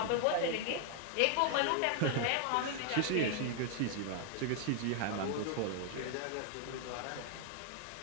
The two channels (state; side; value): different; both; correlation 0.00